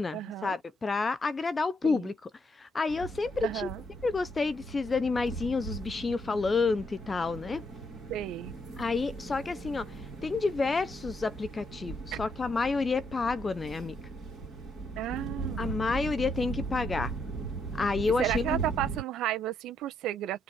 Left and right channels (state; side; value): normal; both; correlation 0.76